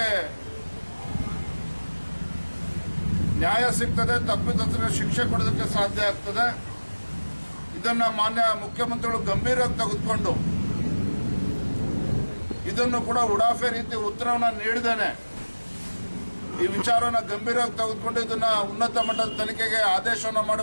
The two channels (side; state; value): both; inverted; correlation -1.00